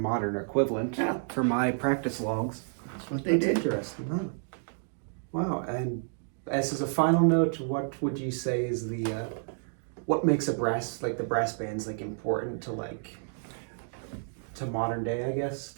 equivalent for my practice logs. That's what they did. Interesting. Huh? Wow. And as a final note, what would you say is what makes the brass bands important to modern day, I guess?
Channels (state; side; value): silent; left; digital silence